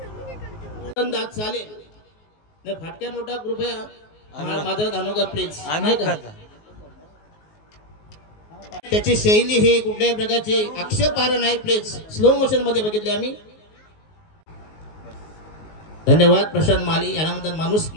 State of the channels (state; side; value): late; right; 19 ms